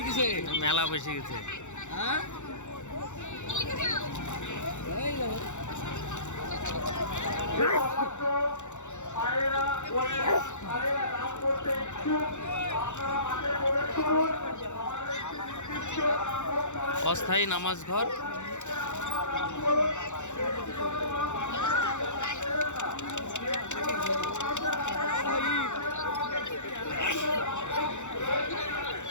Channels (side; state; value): right; late; 0.84 ms